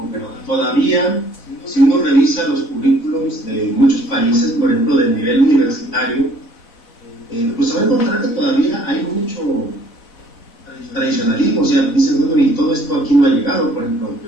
pero todavía, si uno revisa los currículums de muchos países, por ejemplo, del nivel universitario, pues se va a encontrar que todavía hay mucho tradicionalismo. O sea, dicen, bueno, y todo esto aquí no ha llegado. Por ejemplo,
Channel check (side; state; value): right; late; 4.0 ms